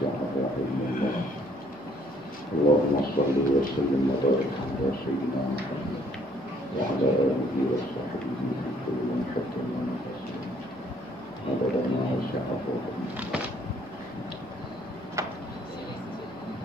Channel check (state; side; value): normal; both; correlation 0.63